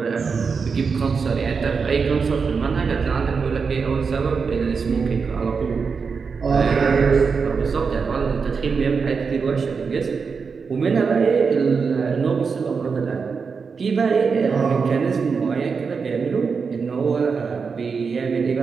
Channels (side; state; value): left; quieter; 5.4 dB